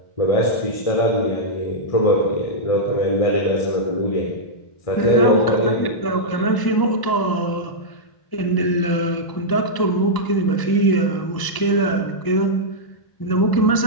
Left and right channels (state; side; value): late; right; 1.0 ms